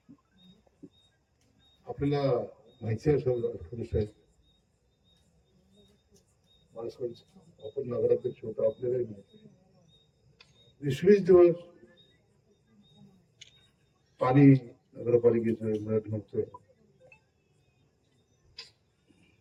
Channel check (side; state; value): both; identical; correlation 1.00